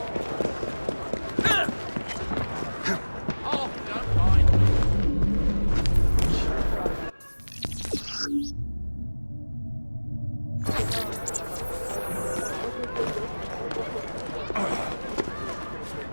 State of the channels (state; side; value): inverted; both; correlation -1.00